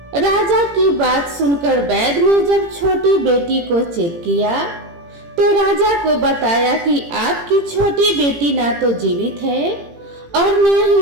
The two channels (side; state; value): left; late; 18 ms